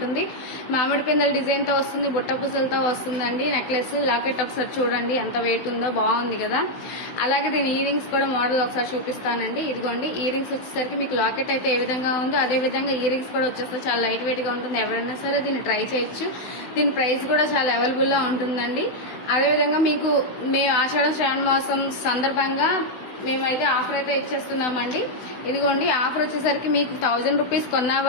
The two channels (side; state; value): right; late; 16 ms